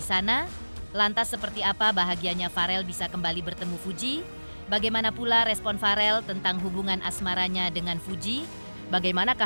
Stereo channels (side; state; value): both; inverted; correlation -1.00